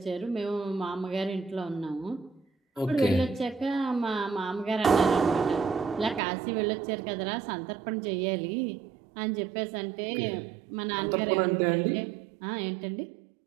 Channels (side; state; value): left; drops out; at 6.2 s